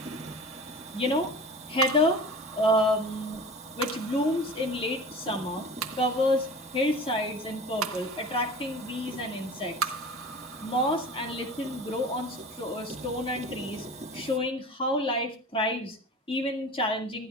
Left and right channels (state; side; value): normal; both; correlation 0.36